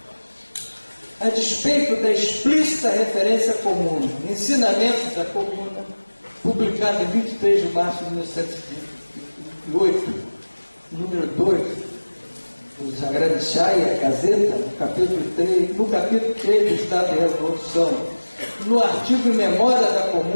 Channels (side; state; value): both; inverted; correlation -1.00